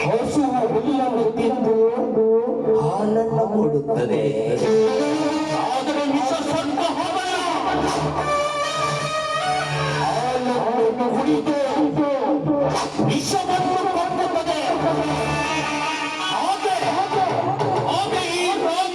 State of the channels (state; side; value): identical; both; correlation 1.00